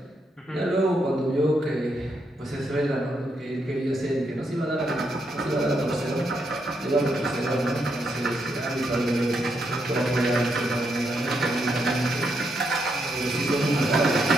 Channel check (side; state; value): both; normal; correlation 0.79